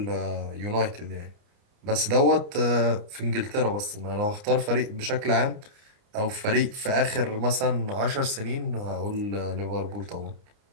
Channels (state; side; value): late; left; 29 ms